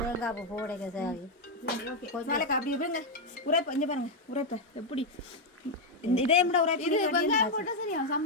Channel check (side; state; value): both; normal; correlation 0.01